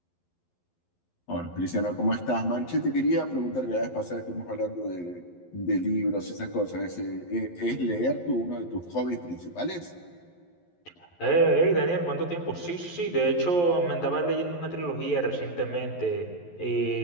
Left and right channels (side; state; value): right; late; 11 ms